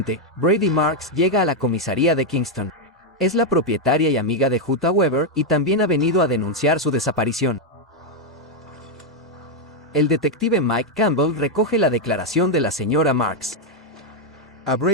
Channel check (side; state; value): both; normal; correlation 0.01